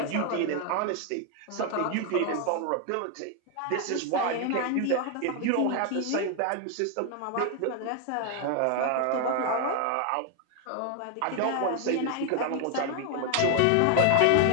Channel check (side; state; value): both; different; correlation 0.00